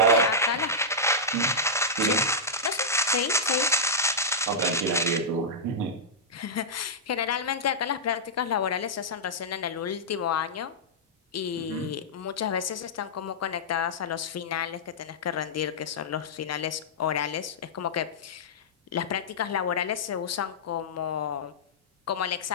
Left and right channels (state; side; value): normal; both; correlation -0.11